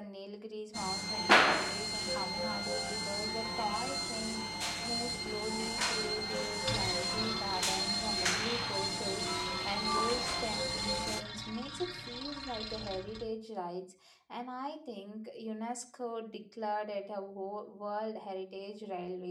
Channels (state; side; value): identical; both; correlation 1.00